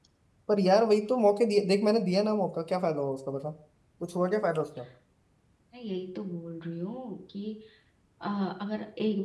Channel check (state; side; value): identical; both; correlation 1.00